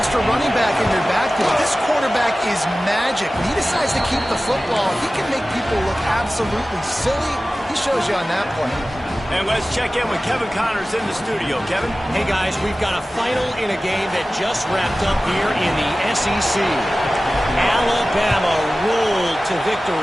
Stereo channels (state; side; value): normal; both; correlation 0.96